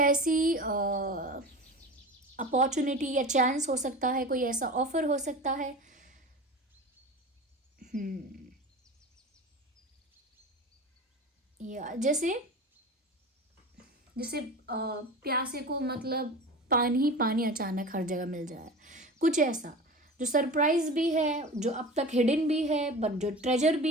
अपॉर्चुनिटी या चांस हो सकता है, कोई ऐसा ऑफ़र हो सकता है। या जैसे जैसे प्यासे को मतलब पानी ही पानी अचानक हर जगह मिल जाए, कुछ ऐसा जो सरप्राइज भी है, जो अब तक हिडन भी है, बट जो ट्रेजर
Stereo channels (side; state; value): both; normal; correlation 0.33